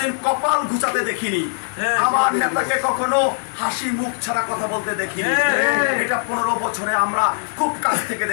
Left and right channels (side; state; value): right; silent; 64 dB below the other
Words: কপাল ঘুচাতে দেখিনি, আমার নেতাকে কখনো হাসি মুখ ছাড়া কথা বলতে দেখিনি। এটা 15 বছরে আমরা খুব কাছ থেকে